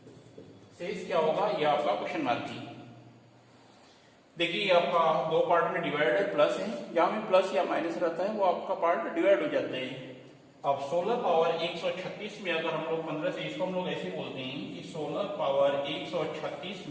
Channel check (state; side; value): identical; both; correlation 1.00